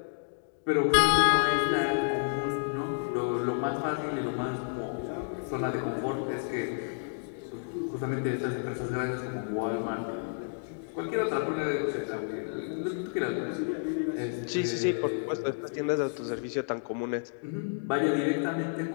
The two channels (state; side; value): silent; right; digital silence